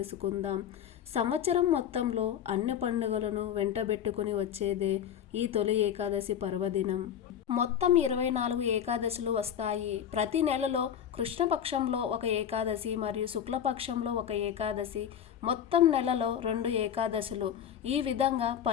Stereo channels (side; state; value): right; quieter; 9.2 dB